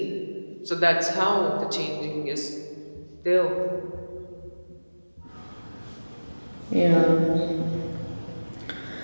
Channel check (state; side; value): inverted; both; correlation -1.00